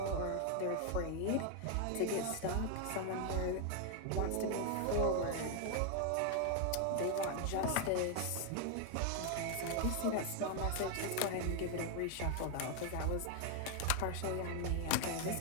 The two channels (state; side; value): different; both; correlation 0.00